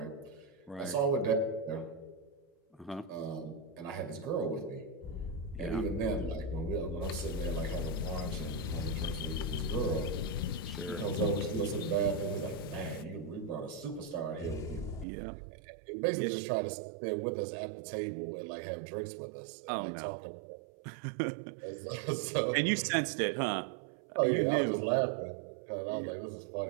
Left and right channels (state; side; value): drops out; left; at 15.1 s